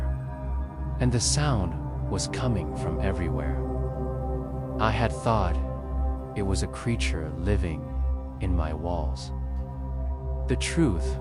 and the sound was coming from everywhere. I had thought it was a creature living in my walls. The truth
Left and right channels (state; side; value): identical; both; correlation 1.00